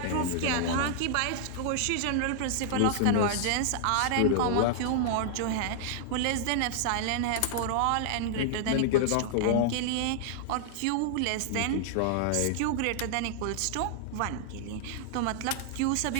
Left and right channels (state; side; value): different; both; correlation -0.01